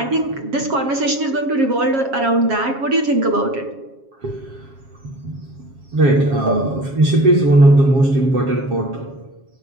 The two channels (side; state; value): left; late; 7.4 ms